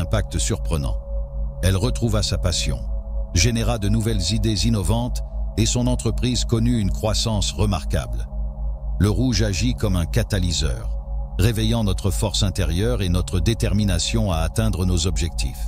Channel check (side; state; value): both; identical; correlation 1.00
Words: surprenant. Elle retrouva sa passion, généra de nouvelles idées innovantes et son entreprise connut une croissance remarquable. Le rouge agit comme un catalyseur, réveillant notre force intérieure et notre détermination à atteindre nos